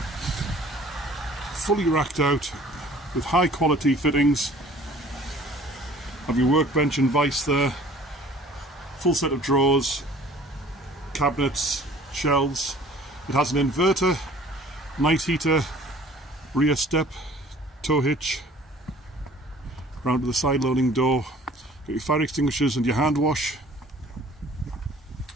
Fully racked out with high quality fittings. Have your workbench and vise there, full set of drawers, cabinets, shelves. It has an inverter, night heater, rear step, tow hitch, round to the side loading door. Got your fire extinguishers and your hand wash.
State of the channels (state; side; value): normal; both; correlation 0.51